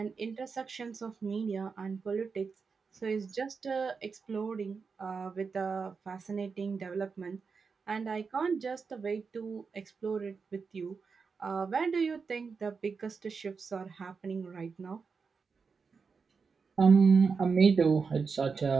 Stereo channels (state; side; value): quieter; left; 5.2 dB